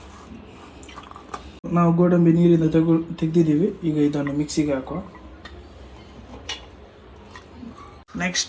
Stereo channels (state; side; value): identical; both; correlation 1.00